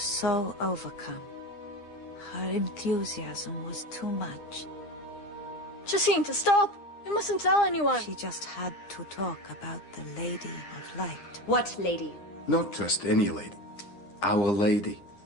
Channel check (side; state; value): right; late; 9.9 ms